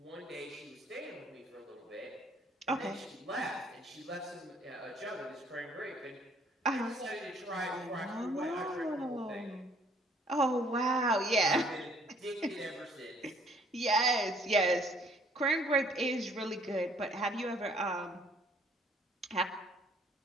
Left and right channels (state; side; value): normal; both; correlation 0.60